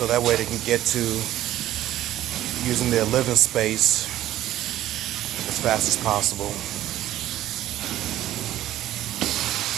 that way they can get to using their living space as fast as possible.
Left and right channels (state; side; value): quieter; left; 13.6 dB